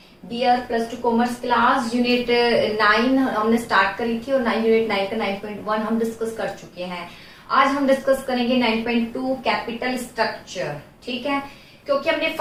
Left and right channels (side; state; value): both; identical; correlation 1.00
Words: Dear plus 2 commerce class unit 9 हमने start करी थी और unit 9 का 9.1 हम डिस्कस कर चुके हैं। आज हम डिस्कस करेंगे 9.2 कैपिटल स्ट्रक्चर। ठीक है, क्योंकि हमने